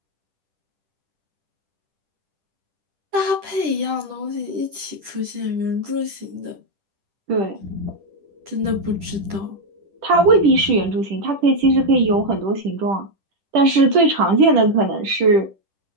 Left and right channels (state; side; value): late; left; 10 ms